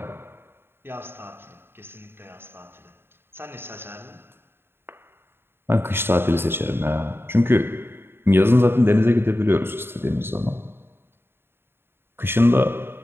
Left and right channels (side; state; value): left; late; 0.11 ms